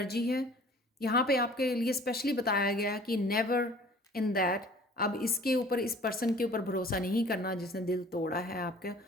है यहाँ पे आपके लिए, स्पेशली बताया गया कि नेवर इन दैट, अब इसके ऊपर, इस पर्सन के ऊपर भरोसा नहीं करना जिसने दिल तोड़ा है आपके,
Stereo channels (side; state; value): both; normal; correlation 0.49